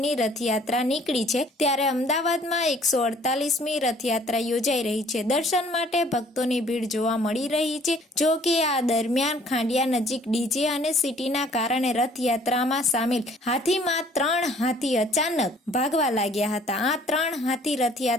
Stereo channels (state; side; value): normal; both; correlation 0.57